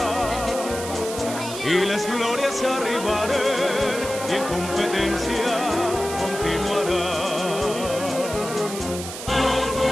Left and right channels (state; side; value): noise; right; hiss, 9 dB below the sound